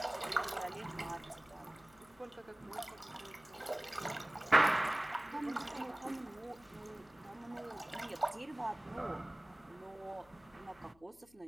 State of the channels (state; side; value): noise; left; hum, 27 dB below the sound